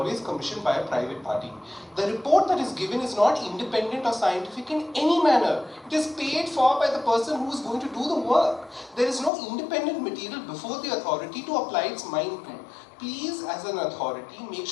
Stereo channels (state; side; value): drops out; right; at 9.3 s